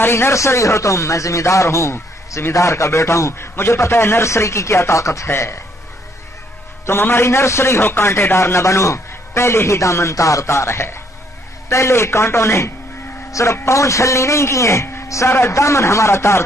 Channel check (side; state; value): both; normal; correlation 0.68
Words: نرسری ہو تم، میں ذمہ دار ہوں، ذمہ دار کا بیٹا ہوں، مجھے پتہ ہے نرسری کی کیا طاقت ہے۔ تم ہماری نرسری ہو، کانٹے دار نہ بنو، پہلے ہی دامن تار تار ہے، پہلے کانٹوں نے صرف پاؤں چھلنی نہیں کیے، سارا دامن ہمارا تار